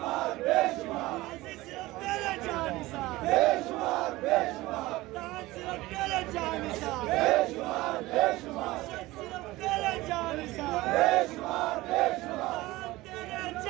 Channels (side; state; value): left; quieter; 19.1 dB